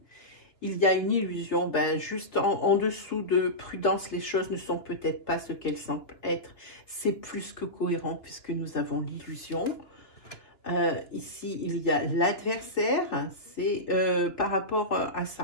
Il y a une illusion. Ben, juste en dessous de prudence, les choses ne sont peut-être pas ce qu'elles semblent être. C'est plus que cohérent puisque nous avons l'illusion. Ici, il y a l'adversaire. C'est par rapport à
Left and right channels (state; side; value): late; right; 2.7 ms